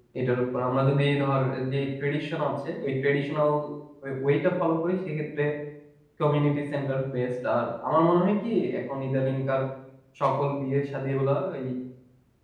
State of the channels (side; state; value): both; identical; correlation 1.00